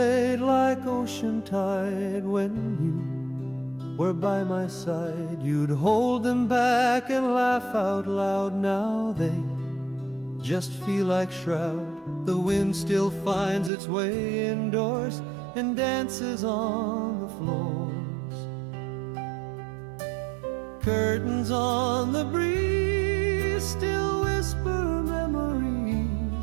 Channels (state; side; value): drops out; left; at 13.7 s